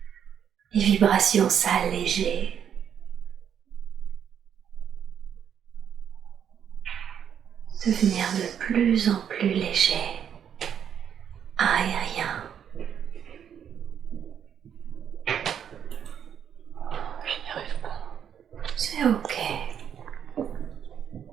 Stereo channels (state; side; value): quieter; left; 8.5 dB